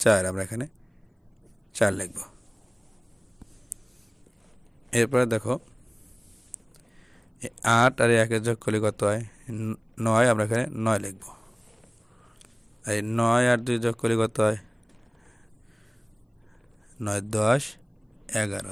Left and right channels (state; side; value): identical; both; correlation 1.00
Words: আমরা এখানে 4 লিখব। এরপরে দেখো 8 আর 1 এর যোগ করলে কত হয় 9, আমরা এখানে 9 লিখব। এই 9 আর 2 যোগ করলে কত হয় 9 10 11,